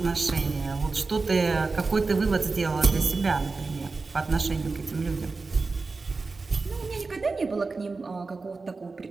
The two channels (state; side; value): quieter; left; 4.0 dB